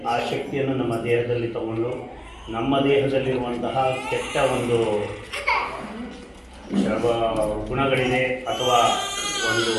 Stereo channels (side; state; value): both; identical; correlation 1.00